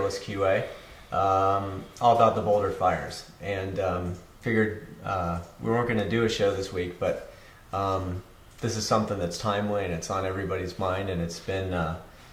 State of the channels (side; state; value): both; identical; correlation 1.00